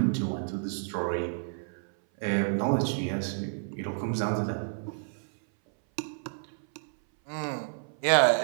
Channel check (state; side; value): silent; left; 58 dB below the other